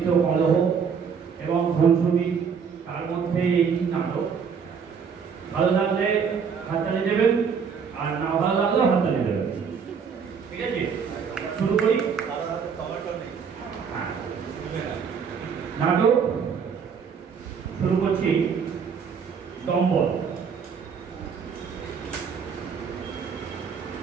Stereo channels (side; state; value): left; quieter; 6.4 dB